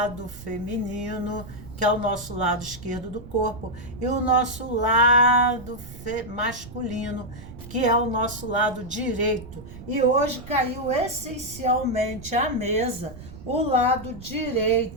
feminino, que é o nosso lado esquerdo do corpo, e o nosso lado masculino, que é o nosso lado direito. E hoje caiu essencialmente à mesa o lado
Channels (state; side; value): noise; right; rumble, 15 dB below the sound